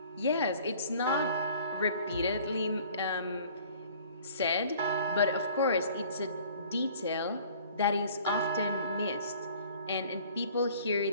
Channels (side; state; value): both; inverted; correlation -0.51